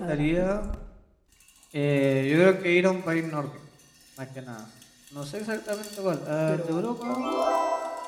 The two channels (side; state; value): both; identical; correlation 1.00